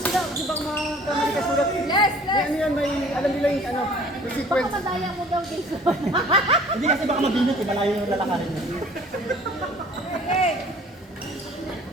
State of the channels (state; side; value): normal; both; correlation 0.51